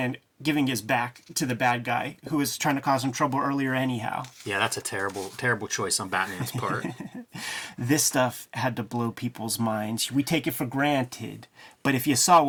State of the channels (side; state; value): both; identical; correlation 1.00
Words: giving his back to the bad guy who was trying to cause him trouble earlier anyhow. Yeah, that's a terrible, terrible choice on Batman's part. This stuff had to blow people's minds. We take it for granted, but if you saw